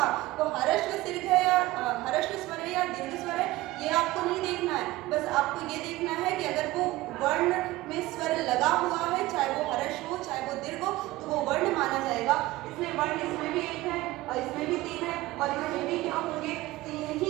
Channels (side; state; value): left; quieter; 18.2 dB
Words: वो हर्ष दीर्घ है या हर्ष स्वर है या दीर्घ स्वर है, ये आपको नहीं देखना है। बस आपको ये देखना है कि अगर वो वर्ण में स्वर लगा हुआ है, चाहे वो हर्ष हो चाहे वो दीर्घ हो, तो वो वर्ण माना जाएगा। इसमें वर्ण इसमें भी एक है और इसमें भी 3 है और इसमें भी क्या होंगे, 3